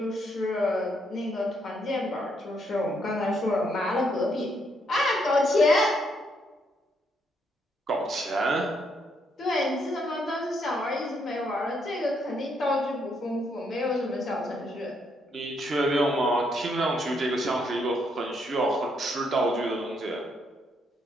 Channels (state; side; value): normal; both; correlation 0.74